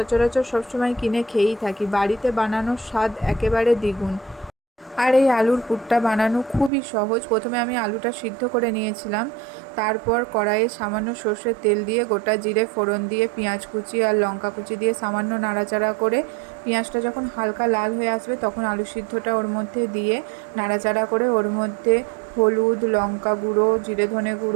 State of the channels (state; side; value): drops out; left; at 6.7 s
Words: সবসময় কিনে খেয়েই থাকি, বাড়িতে বানানোর স্বাদ একেবারে দ্বিগুণ। আর এই আলুর পুরটা বানানো খুবই সহজ। প্রথমে আমি আলুটা সিদ্ধ করে নিয়েছিলাম, তারপর কড়াইয়ে সামান্য সর্ষের তেল দিয়ে গোটা জিরে ফোড়ন দিয়ে পেঁয়াজ কুচি আর লঙ্কা কুচি দিয়ে সামান্য নাড়াচাড়া করে পেঁয়াজটা যখন হালকা লাল হয়ে আসবে তখন আলু সিদ্ধটা ওর মধ্যে দিয়ে নাড়াচাড়া করে ওর মধ্যে হলুদ, লঙ্কা গুঁড়ো, জিরে ধনে